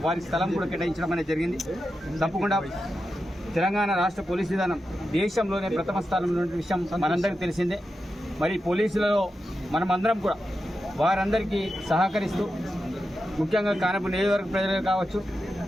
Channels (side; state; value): both; normal; correlation 0.89